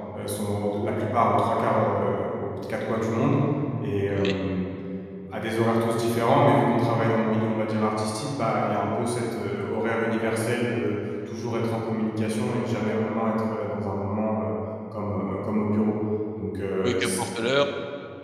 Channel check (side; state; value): both; identical; correlation 1.00